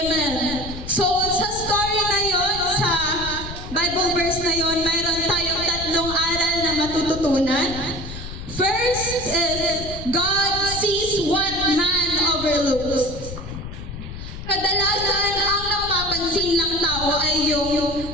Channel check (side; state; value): left; noise; rumble, 10 dB below the sound